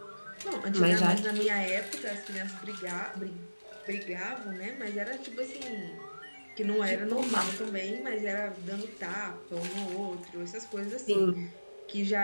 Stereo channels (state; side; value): inverted; both; correlation -1.00